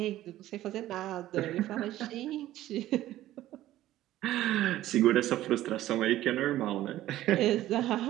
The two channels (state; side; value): quieter; left; 14.3 dB